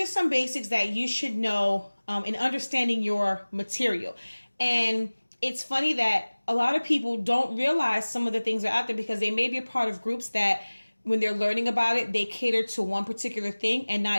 some basics that you should know in understanding your material. And it's funny that a lot of people don't realize some of the things are out there because they may be a part of groups that when they're learning about it, they cater to one particular thing and not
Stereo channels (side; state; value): both; inverted; correlation -1.00